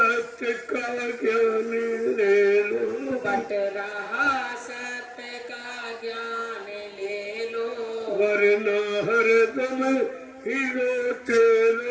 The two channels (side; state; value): both; identical; correlation 1.00